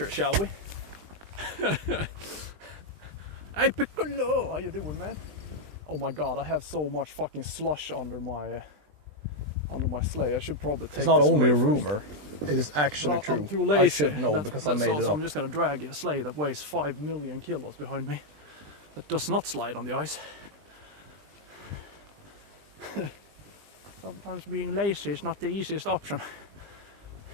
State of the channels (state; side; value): late; left; 20 ms